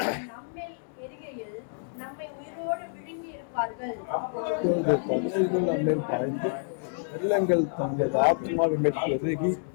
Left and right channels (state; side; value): silent; right; digital silence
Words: நம்மேல் எரிகையில் நம்மை உயிரோடு விழுங்கி இருப்பார்கள். நம்மேல் பாய்ந்து வெள்ளங்கள் தமது ஆத்மாவின் மேல் பெருகி